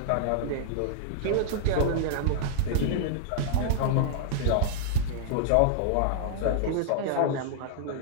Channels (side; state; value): both; different; correlation -0.01